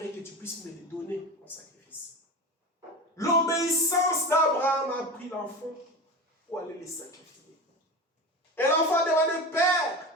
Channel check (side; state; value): both; normal; correlation 0.27